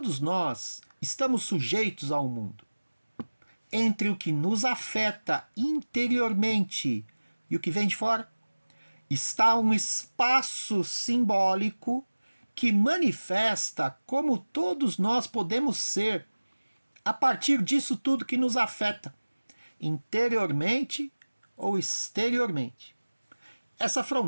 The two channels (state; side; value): inverted; both; correlation -1.00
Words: nós estamos sujeitos ao mundo. Entre o que nos afeta interiormente e o que vem de fora, está um espaço simbólico que manifesta como todos nós podemos ser a partir disso tudo que nos afeta, interiormente ou exteriormente. Essa